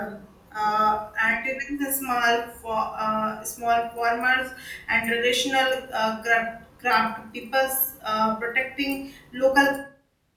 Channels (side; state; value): both; identical; correlation 1.00